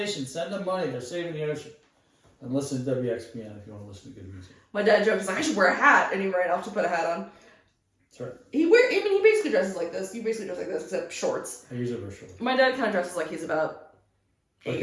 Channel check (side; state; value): both; identical; correlation 1.00